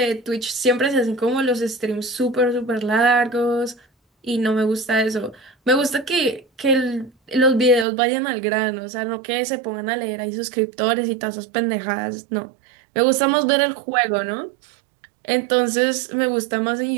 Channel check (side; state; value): left; drops out; at 7.9 s